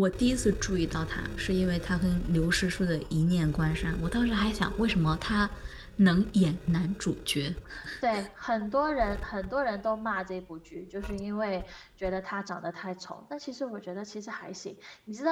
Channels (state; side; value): identical; both; correlation 1.00